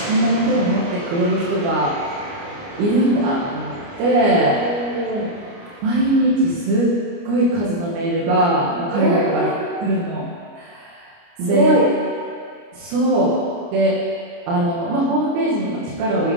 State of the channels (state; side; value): late; left; 29 ms